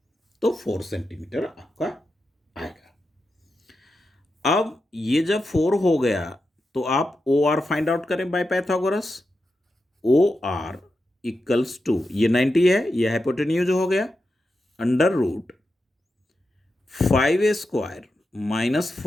तो 4 सेंटीमीटर आपका आएगा। अब ये जब 4 हो गया तो आप OR फाइंड आउट करें by Pythagoras. OR equals to, ये 90 है, ये हाइपोटेन्यूज हो गया, under root 5 square minus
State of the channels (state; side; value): normal; both; correlation 0.89